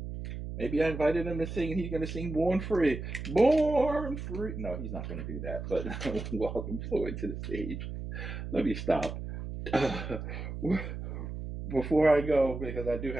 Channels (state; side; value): noise; right; hum, 7 dB below the sound